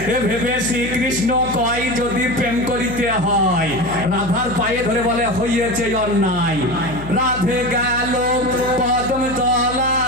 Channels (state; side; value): noise; left; hum, 11 dB below the sound